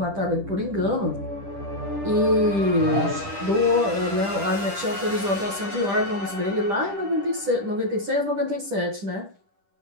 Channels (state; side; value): late; left; 10 ms